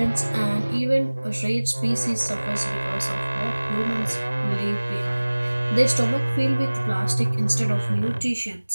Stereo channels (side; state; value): both; inverted; correlation -1.00